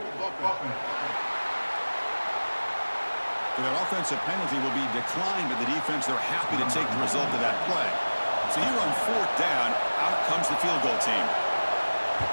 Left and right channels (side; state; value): both; inverted; correlation -1.00